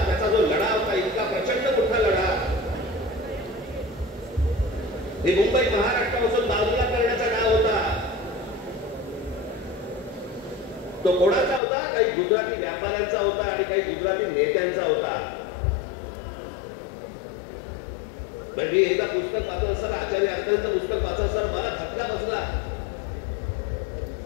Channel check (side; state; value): right; drops out; at 11.6 s